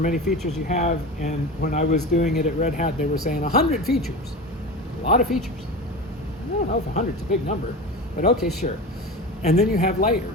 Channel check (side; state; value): both; normal; correlation 0.29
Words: features you have. And when I was doing it at Red Hat, they were saying 100 features. A lot of features. I don't know if 100 is a big number, but okay, sure. And then you have